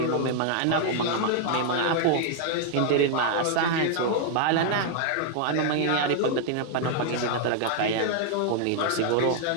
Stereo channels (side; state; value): both; different; correlation 0.00